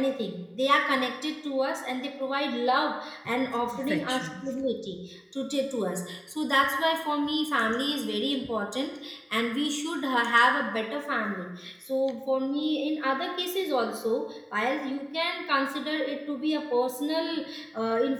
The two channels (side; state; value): both; identical; correlation 1.00